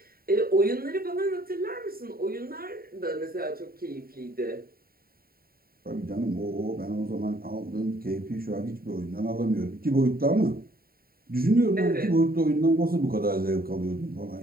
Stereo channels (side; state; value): left; late; 0.43 ms